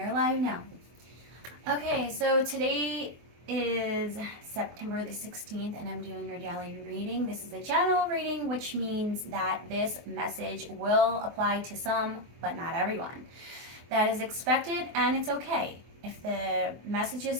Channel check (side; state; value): left; late; 24 ms